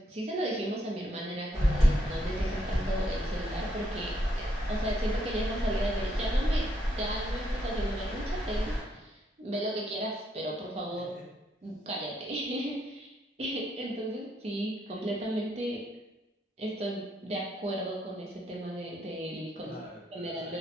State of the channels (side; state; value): both; normal; correlation 0.74